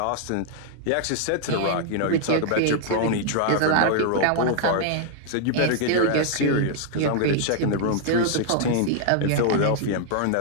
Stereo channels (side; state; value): both; different; correlation -0.01